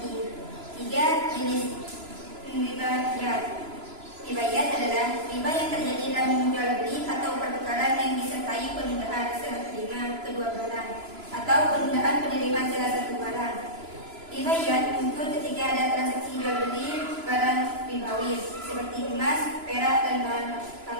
ketiga, jenis ribayat. Ribayat adalah riba yang terjadi dalam jual beli atau pertukaran yang disertai penundaan serah terima kedua barang atau penundaan penerimaan salah satu barang. Ribayat muncul ketika ada transaksi jual beli barang ribawi seperti emas, perak, dan bahan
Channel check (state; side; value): late; left; 3.0 ms